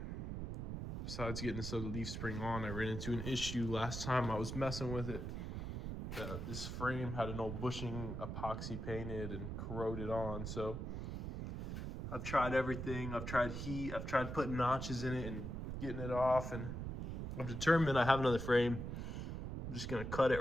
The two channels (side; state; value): right; noise; rumble, 4 dB below the sound